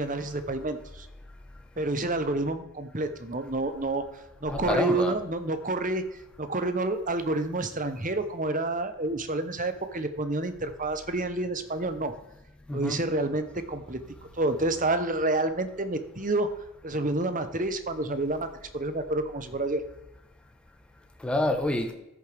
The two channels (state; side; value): normal; both; correlation 0.31